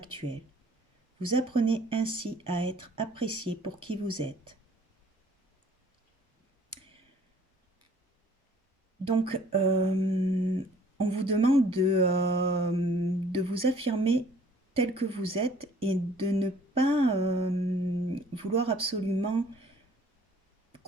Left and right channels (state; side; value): normal; both; correlation 0.56